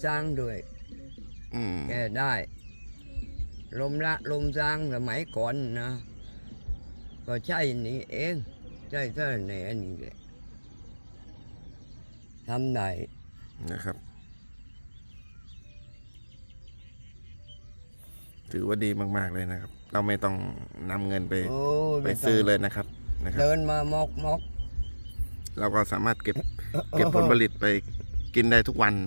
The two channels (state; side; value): inverted; both; correlation -1.00